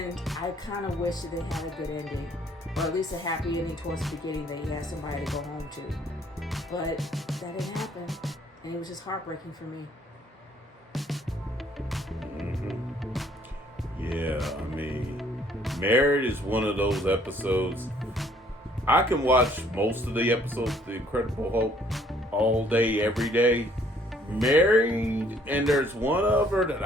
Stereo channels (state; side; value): normal; both; correlation 0.62